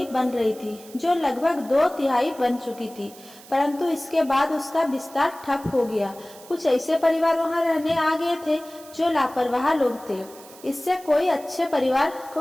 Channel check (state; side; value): noise; right; hiss, 21 dB below the sound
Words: बन रही थी जो लगभग 2/3 बन चुकी थी, परंतु इसके बाद उसका विस्तार ठप हो गया। कुछ ऐसे परिवार वहां रहने आ गए थे जो लापरवाह लोग थे। इससे कोई अच्छे परिवार को